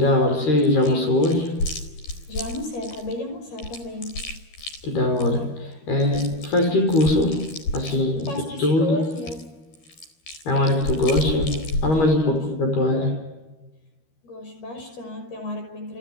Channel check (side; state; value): right; late; 13 ms